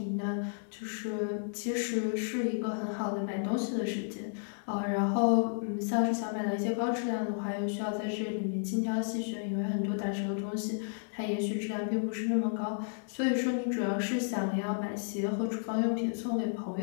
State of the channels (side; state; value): right; silent; 56 dB below the other